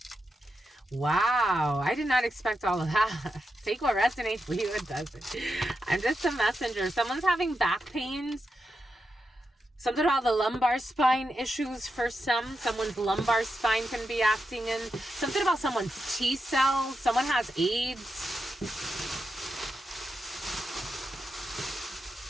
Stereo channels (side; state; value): both; normal; correlation 0.87